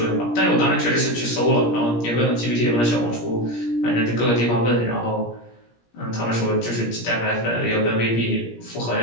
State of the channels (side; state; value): right; late; 17 ms